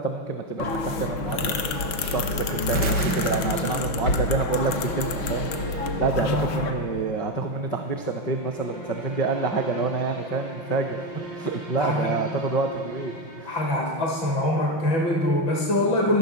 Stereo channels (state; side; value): late; right; 6.1 ms